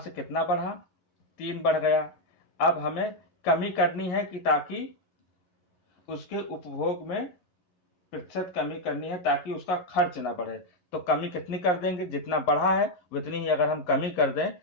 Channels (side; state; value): right; late; 11 ms